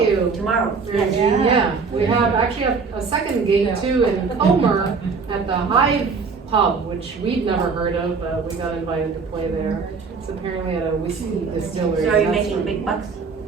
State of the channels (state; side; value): quieter; left; 5.0 dB